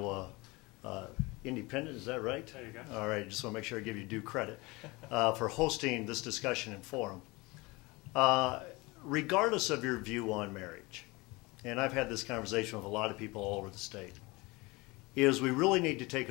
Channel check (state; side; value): quieter; right; 24.1 dB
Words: Independent, is that right? There you go. All right, just want to make sure I give you due credit for hosting this discussion and forum. Regardless of your view on marriage, and I've had this conversation with a lot of people all over the state, is we really need to take